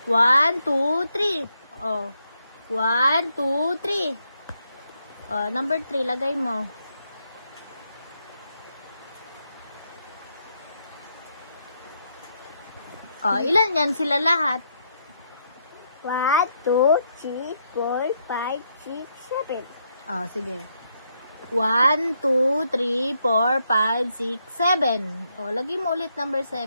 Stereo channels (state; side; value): inverted; both; correlation -0.77